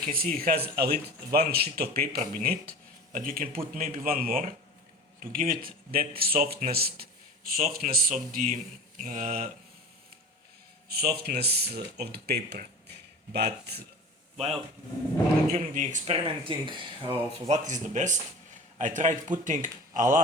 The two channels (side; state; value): both; normal; correlation 0.36